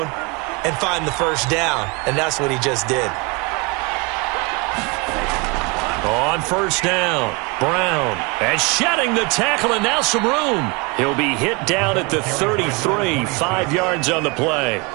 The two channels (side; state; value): left; quieter; 28.3 dB